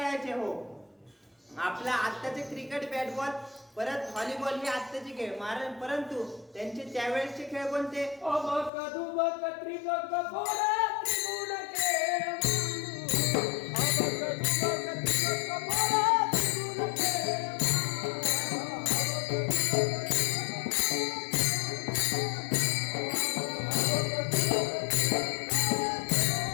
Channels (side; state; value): right; drops out; at 8.7 s